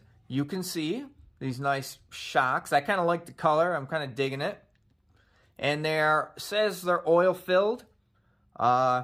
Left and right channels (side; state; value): both; identical; correlation 1.00